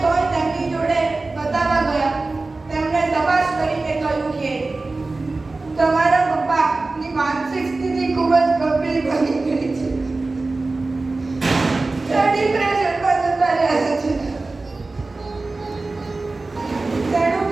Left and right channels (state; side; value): quieter; left; 3.4 dB